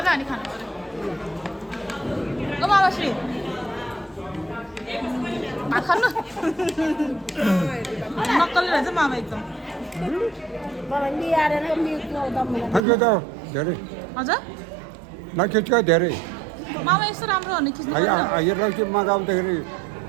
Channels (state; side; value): drops out; left; at 12.8 s